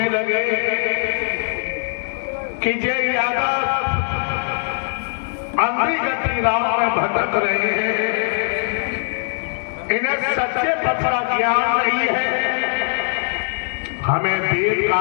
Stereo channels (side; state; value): right; silent; digital silence